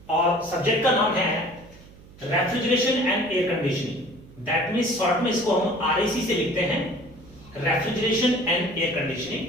और सब्जेक्ट का नाम है refrigeration and air conditioning. That means short में इसको हम आरएसी से लिखते हैं, रेफ्रिजरेशन एंड एयर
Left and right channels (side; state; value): right; noise; hum, 22 dB below the sound